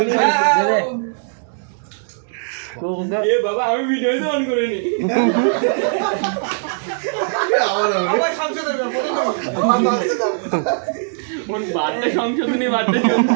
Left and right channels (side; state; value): left; silent; digital silence